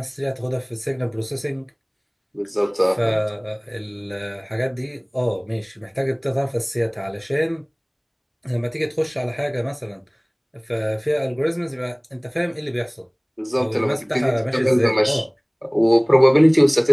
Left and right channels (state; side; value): identical; both; correlation 1.00